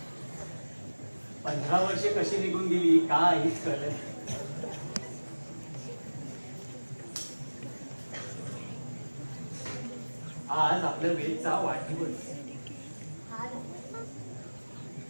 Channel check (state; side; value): inverted; both; correlation -1.00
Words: 15 वर्षे कशी निघून गेली काहीच कळलं नाही. आज आपल्या वेदचा वाढदिवस.